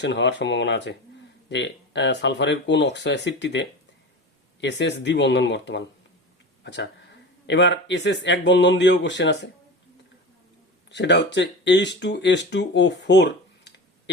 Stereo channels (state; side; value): normal; both; correlation 0.30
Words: হওয়ার সম্ভাবনা আছে যে সালফারের কোন অক্সো অ্যাসিডটিতে SS দ্বিবন্ধন বর্তমান। আচ্ছা, এবার SS এক বন্ধন দিয়েও কোশ্চেন আছে, সেটা হচ্ছে H2S2O4